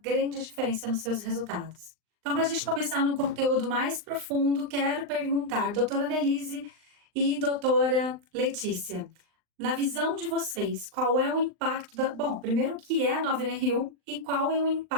grande diferença nos seus resultados. Então, para a gente começar num conteúdo mais profundo, quero perguntar, doutora Annelise e doutora Letícia, na visão de vocês, qual é o impacto Bom, primeiro, o que é a nova NR1 e qual é o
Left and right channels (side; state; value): left; late; 39 ms